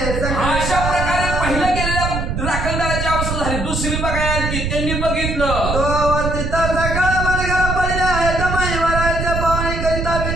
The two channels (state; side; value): noise; right; rumble, 2 dB below the sound